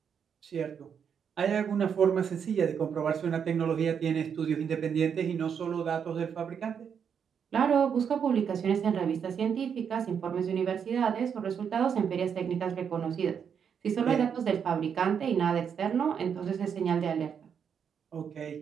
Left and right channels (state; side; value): quieter; left; 7.4 dB